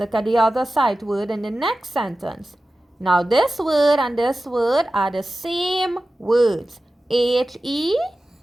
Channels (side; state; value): both; normal; correlation 0.95